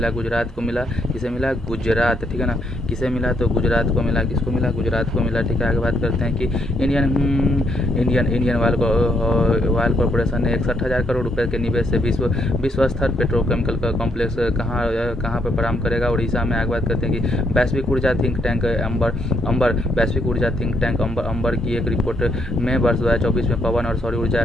गुजरात को मिला। किसे मिला? गुजरात, ठीक है ना। किसे मिला? तो गुजरात को मिला। किसको मिला? गुजरात को मिला, ठीक है। आगे बात करते हैं कि इंडियन ऑयल कॉर्पोरेशन ने 61,000 करोड़ रुपए के निवेश से विश्व स्तर पेट्रोकेमिकल का कॉम्प्लेक्स कहाँ पर प्रारंभ करेगा? उड़ीसा में। आगे बात करते हैं कि वैश्विक ऊर्जा थिंक टैंक अंबर की एक रिपोर्ट में वर्ष 2024 में पवन और सौर ऊर्जा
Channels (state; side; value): normal; both; correlation 0.74